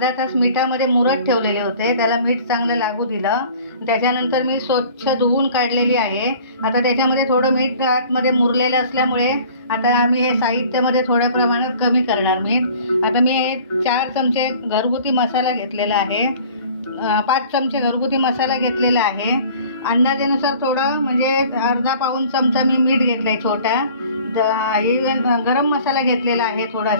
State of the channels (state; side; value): inverted; both; correlation -0.48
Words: तास मिठामध्ये मुरत ठेवलेले होते, त्याला मीठ चांगलं लागू दिलं। त्याच्यानंतर मी स्वच्छ धुवून काढलेली आहे। आता त्याच्यामध्ये थोडं मीठ आतमध्ये मुरलेलं असल्यामुळे आता आम्ही हे साहित्यामध्ये थोड्या प्रमाणात कमी करणार मीठ। आता मी 4 चमचे घरगुती मसाला घेतलेला आहे, 5 चमचे घरगुती मसाला घेतलेला आहे। अंदाजानुसार थोडं म्हणजे अर्धा पाऊण चमचा मी मीठ घेतलाय छोटा। गरम मसाला घेतलेला आहे,